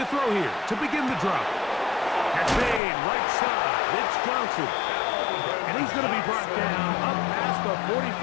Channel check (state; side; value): drops out; right; at 2.8 s